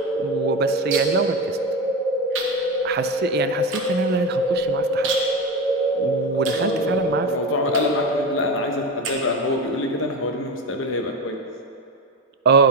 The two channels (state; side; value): normal; both; correlation 0.20